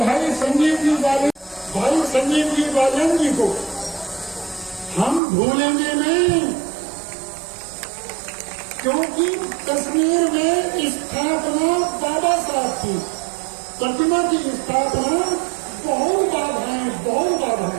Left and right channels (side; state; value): left; drops out; at 5.2 s